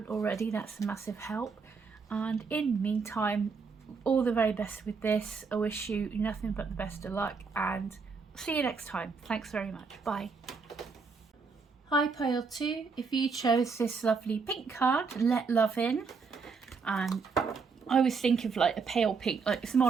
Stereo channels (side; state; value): left; quieter; 5.0 dB